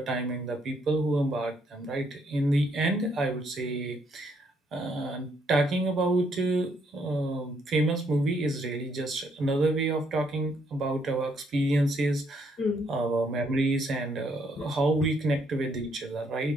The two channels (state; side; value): normal; both; correlation 0.71